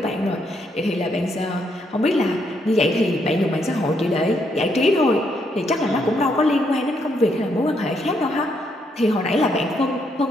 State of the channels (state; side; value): normal; both; correlation 0.75